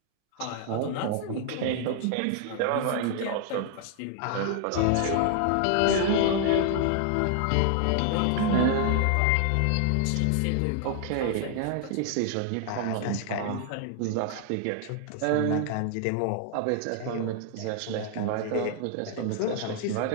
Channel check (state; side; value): different; both; correlation 0.00